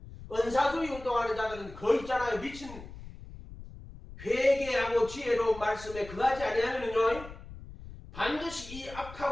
은사주의 운동하는 자들은 거의 있잖아요. 미친 회개하고 지혜로운 말씀에 그하지 아니하면요 반드시 이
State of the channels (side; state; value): left; noise; rumble, 15 dB below the sound